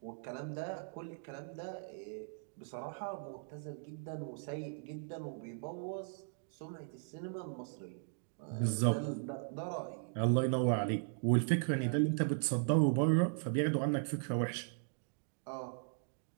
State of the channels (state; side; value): silent; left; digital silence